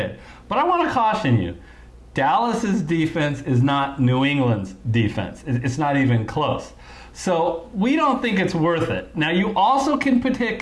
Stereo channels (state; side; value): identical; both; correlation 1.00